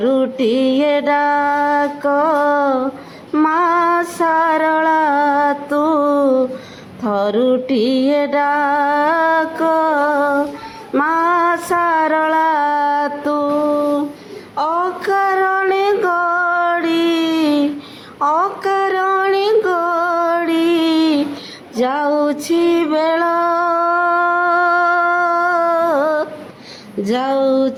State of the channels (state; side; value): identical; both; correlation 1.00